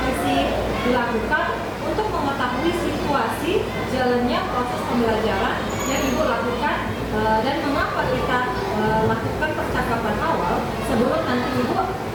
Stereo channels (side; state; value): both; identical; correlation 1.00